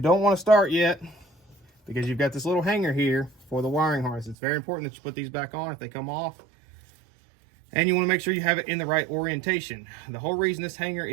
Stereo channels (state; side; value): drops out; left; at 4.4 s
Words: don't want to start yet because you've got this little hanger here for the wiring harness. It's very important that you put these back on if they come off. And you want to make sure you have it in the right orientation. The whole reason this hanger